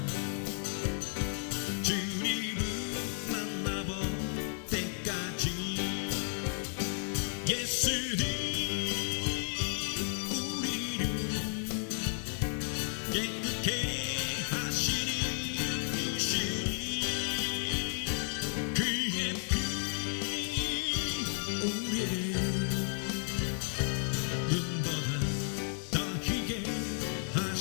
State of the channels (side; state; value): right; silent; 56 dB below the other